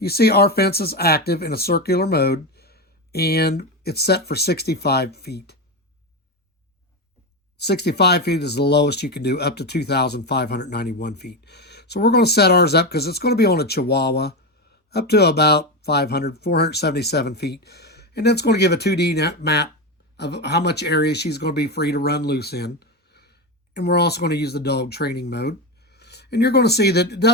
see our fence is active in a circular mode, and it's set for 65 feet. 65 feet is the lowest you can do, up to 2,591 feet. So we're going to set ours up because it's going to be on a Chihuahua up to about 477 feet. And that's going to give a 2D map of how much area she's going to be free to run loose in. And we're also going to use the dog training mode. And you're going to see that it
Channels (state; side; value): normal; both; correlation 0.15